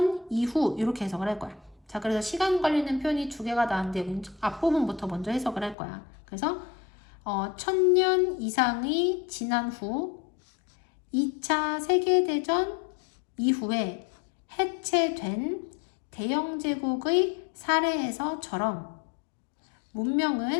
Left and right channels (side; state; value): right; drops out; at 5.8 s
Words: 이후 이렇게 해석을 할 거야. 자, 그래서 시간 관련된 표현이 두 개가 나왔는데 앞부분부터 먼저 해석을 할 거야. 그래서 1000년 이상이 지난 후 2차 세계대전 이후에 해체된 대영제국의 사례에서처럼